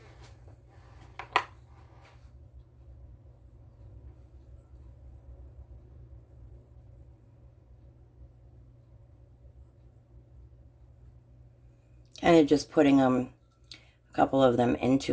Kind of just putting a couple of them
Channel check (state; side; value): identical; both; correlation 1.00